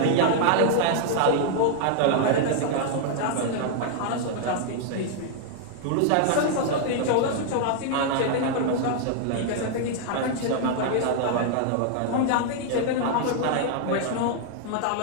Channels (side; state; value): both; different; correlation 0.00